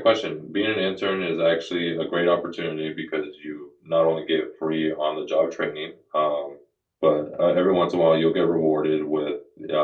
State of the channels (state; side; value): identical; both; correlation 1.00